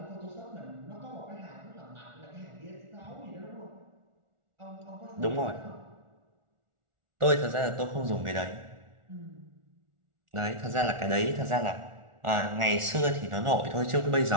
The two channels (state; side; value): late; left; 1.4 ms